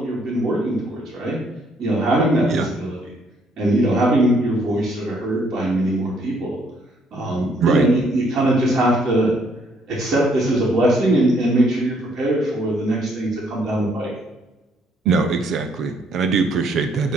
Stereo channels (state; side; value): normal; both; correlation 0.67